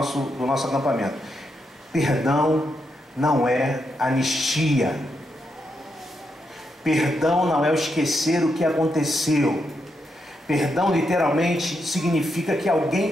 acampamento. Perdão não é anistia. Perdão não é o esquecer o que aconteceu. Perdão literalmente significa que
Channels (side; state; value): both; normal; correlation 0.82